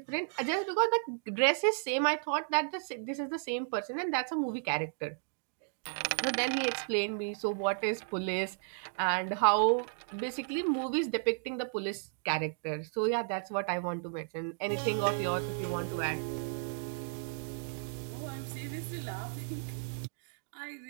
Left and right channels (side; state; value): left; silent; digital silence